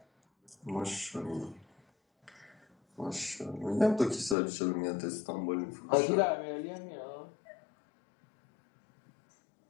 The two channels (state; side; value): drops out; right; at 4.4 s